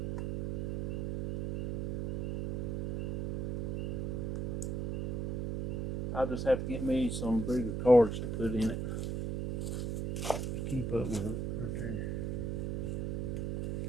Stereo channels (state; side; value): noise; right; hum, 2 dB below the sound